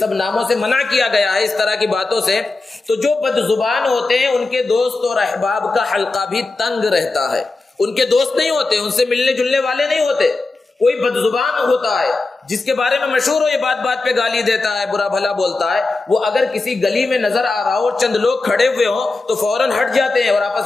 ناموں سے منع کیا گیا ہے، اس طرح کی باتوں سے. تو جو بد زبان ہوتے ہیں ان کے دوست اور احباب کا حلقہ بھی تنگ رہتا ہے. ان کے دوست نہیں ہوتے، ان سے ملنے جلنے والے نہیں ہوتے. کوئی بد زبان ہوتا ہے جس کے بارے میں مشہور ہو، یہ بات بات پہ گالی دیتا ہے، برا بھلا بولتا ہے، وہ اگر کسی گلی میں نظر آ رہا ہو اور چند لوگ کھڑے ہوئے ہوں تو فوراً ہٹ جاتے ہیں اور آپس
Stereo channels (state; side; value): quieter; right; 3.4 dB